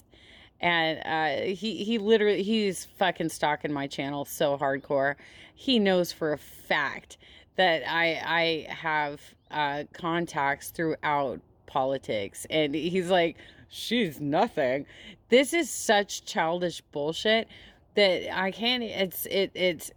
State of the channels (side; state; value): both; identical; correlation 1.00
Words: And he literally, he's fucking stalking my channel so hardcore. He knows for a fact that I have contacts throughout politics. And he's like, she's nothing. This is such childish bullshit that I can't,